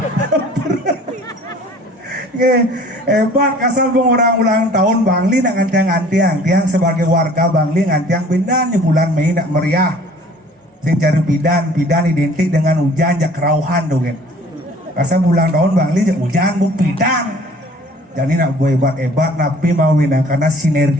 Hebat kasal bang orang ulang tahun Bangli nak ngantiang tiang sebagai warga Bangli ngantiang bidan di bulan Mei nak meriah. Sing cari bidan identik dengan hujan jak kerauhan dong kan. Kasal ulang tahun Bangli jak hujan bu bidan. Jadi nak buat hebat tapi mau winang karena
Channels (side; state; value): both; normal; correlation 0.51